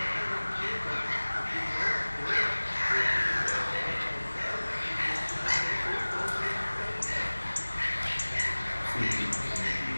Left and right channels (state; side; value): inverted; both; correlation -1.00